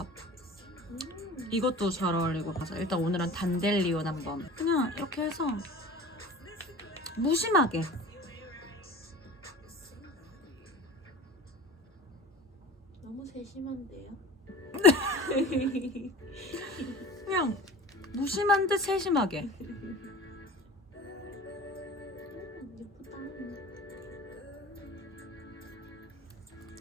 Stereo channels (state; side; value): normal; both; correlation 0.39